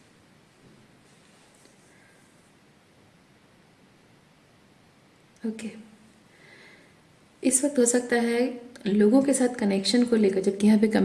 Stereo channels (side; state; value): both; identical; correlation 1.00